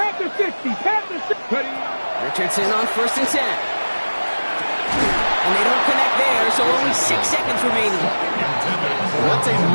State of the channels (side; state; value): both; inverted; correlation -1.00